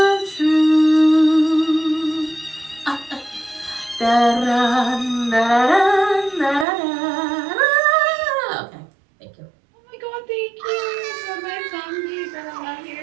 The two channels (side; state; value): left; drops out; at 6.7 s